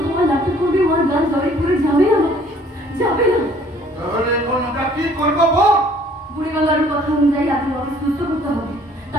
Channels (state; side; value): normal; both; correlation 0.57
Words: নাটক করবে, ওর গা ঝরে পুড়ে যাবে না, যাবে না। তাহলে এখন ওটা কি করবো বল? বুড়িগঙ্গার কথা অনুযায়ী আগে ওকে সুস্থ করতে হবে,